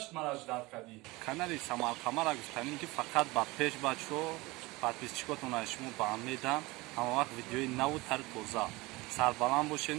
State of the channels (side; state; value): left; quieter; 22.2 dB